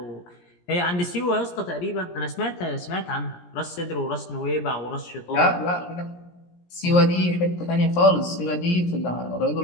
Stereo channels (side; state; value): right; late; 17 ms